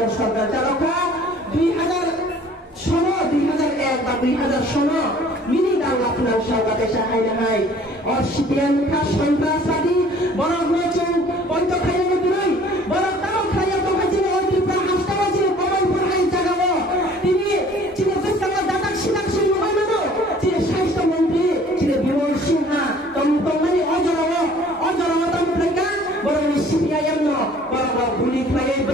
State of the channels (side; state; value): both; normal; correlation 0.53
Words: সরকার চালকা 2001 বা 2000 মিনি বাংলা ফিনান্স সরকার তাইসা হাইনা হাই আর CPIM কা সন্ত্রাসবাদী বড় নচুং পঞ্চ খাইলে দিলই বড় তাও খাইয়া তো খাইছিল ওই ত্রিপুরা হাসতা হইছিল কমলপুর হাই জাগাবো তিনি চিনে বেসকা দাদাক সিনাক সিন হয় মানো চিনে স্বাস্থ্য মন্ত্রী চিনে বিমল সিনহা তমতমানি অজরাও তমপ্লেকা বড় CPIM no বড় গুলি খাইয়ে